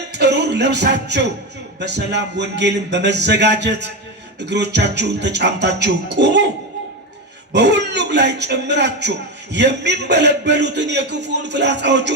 ጥሩር ለብሳችሁ በሰላም ወንጌልን በመዘጋጀት እግሮቻችሁን ተጫምታችሁ ቁሙ። በሁሉም ላይ ጨምራችሁ የሚንበለበሉትን የክፉን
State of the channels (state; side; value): normal; both; correlation 0.15